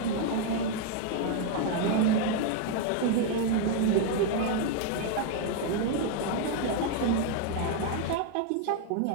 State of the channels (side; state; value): both; different; correlation 0.00